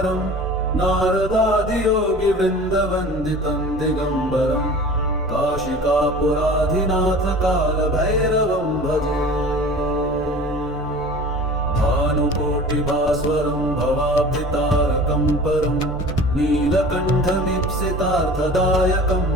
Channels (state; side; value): normal; both; correlation 0.40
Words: नारदादियोगिवृन्दवन्दितं दिगम्बरं काशिकापुराधिनाथकालभैरवं भजे। भानुकोटिभास्वरं भवाब्धितारकं परं नीलकण्ठमीप्सितार्थदायकं